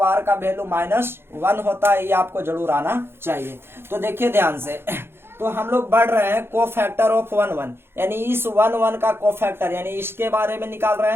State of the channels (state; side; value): late; left; 0.11 ms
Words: का वैल्यू -1 होता है, ये आपको जरूर आना चाहिए। तो देखिए ध्यान से, तो हम लोग बढ़ रहे हैं कोफैक्टर ऑफ 1 यानी इस 1 का कोफैक्टर यानी इसके बारे में निकाल रहे